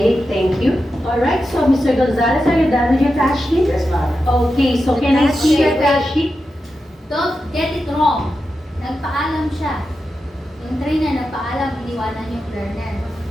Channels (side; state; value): both; normal; correlation 0.90